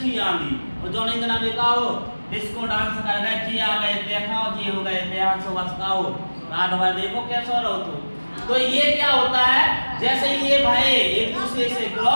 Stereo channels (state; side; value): inverted; both; correlation -1.00